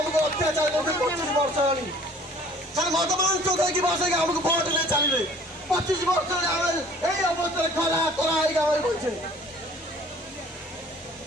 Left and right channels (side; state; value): both; normal; correlation 0.52